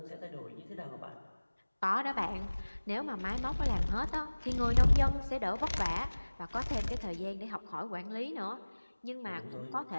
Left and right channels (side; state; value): both; inverted; correlation -1.00